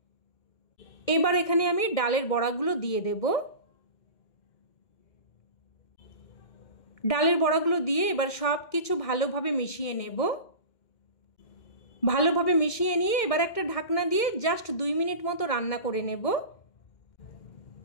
এবার এখানে আমি ডালের বড়াগুলো দিয়ে দেব। ডালের বড়াগুলো দিয়ে এবার সব কিছু ভালোভাবে মিশিয়ে নেব। ভালোভাবে মিশিয়ে নিয়ে এবার একটা ঢাকনা দিয়ে জাস্ট 2 মিনিট মতো রান্না করে নেব,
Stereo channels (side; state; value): right; late; 2.1 ms